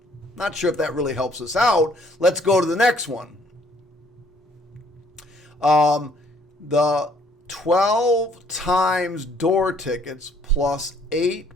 Not sure if that really helps us out. Let's go to the next one. The 12 times door tickets plus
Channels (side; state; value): both; normal; correlation 0.63